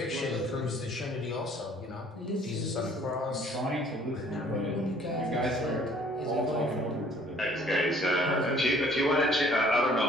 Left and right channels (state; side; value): normal; both; correlation 0.57